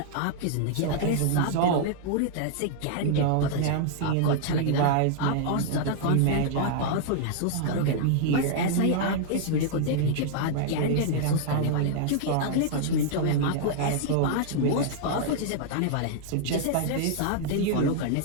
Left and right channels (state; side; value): different; both; correlation -0.01